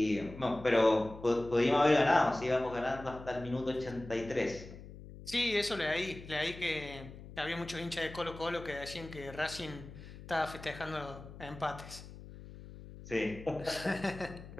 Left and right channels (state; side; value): noise; left; hum, 15 dB below the sound